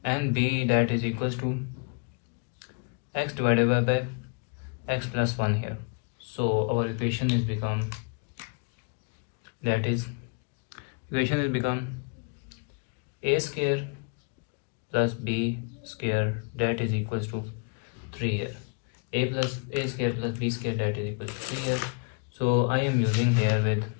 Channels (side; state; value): right; quieter; 36.0 dB